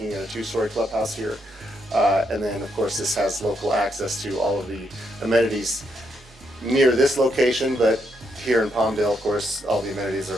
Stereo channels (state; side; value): normal; both; correlation 0.78